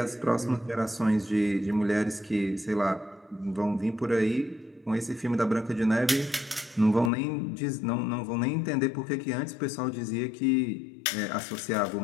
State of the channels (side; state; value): right; drops out; at 7.1 s